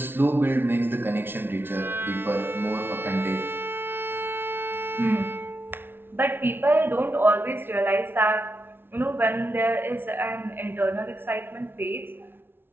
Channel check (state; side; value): late; left; 0.11 ms